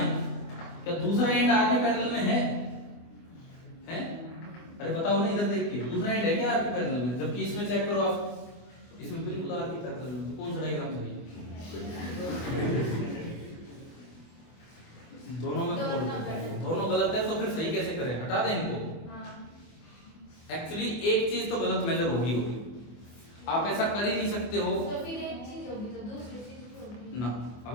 क्या दूसरा एंड आर के पैरेलल में है? अरे बताओ ना, इधर देख के, दूसरा एंड है क्या आर के पैरेलल में? जबकि इसमें चेक करो आप, इसमें बिल्कुल आर के पैरेलल में। तो कौन सा डायग्राम सही है? दोनों में फॉल्ट है, दोनों गलत है। तो फिर सही कैसे करें? हटा दें इनको। एक्चुअली एक चीज तो गलत मेजर होगी, आप ऐसा कर ही नहीं सकते हो। तो फिर एक चीज होगी तो दूसरी चीज होगी ना,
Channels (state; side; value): late; right; 24 ms